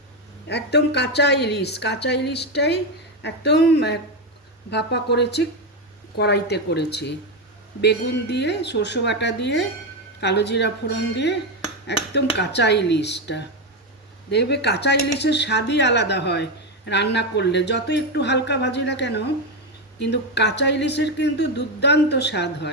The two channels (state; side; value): normal; both; correlation 0.09